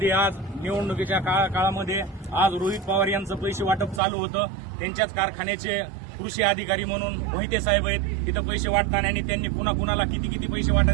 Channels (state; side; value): drops out; left; at 4.0 s